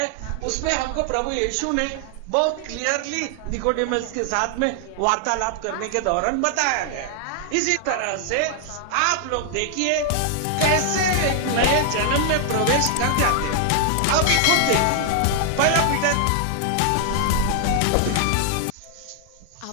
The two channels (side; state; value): both; different; correlation 0.00